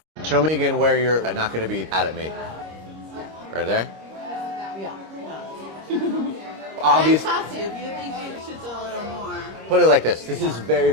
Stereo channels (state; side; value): late; left; 26 ms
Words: Show me again where you're not going to be mad at me. Right there? Yeah. Obviously. If you think you should do a little more. Put it like this. This is very,